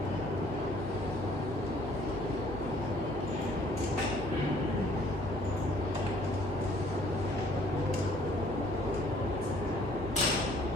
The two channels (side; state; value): both; normal; correlation 0.59